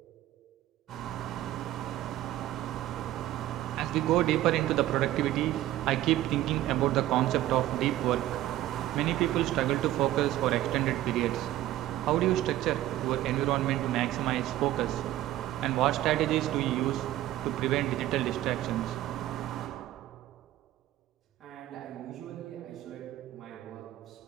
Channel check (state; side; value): quieter; left; 14.4 dB